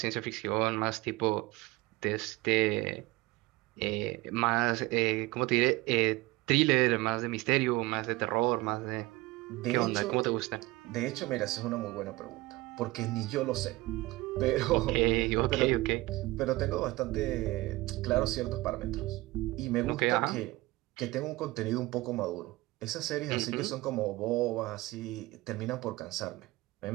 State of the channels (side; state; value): left; quieter; 20.3 dB